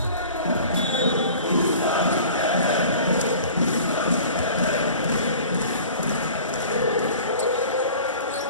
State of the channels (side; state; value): both; inverted; correlation -0.44